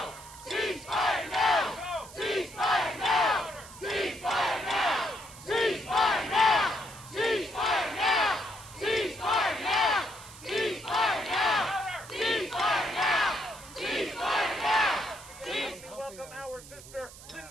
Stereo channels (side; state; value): right; noise; hiss, 17 dB below the sound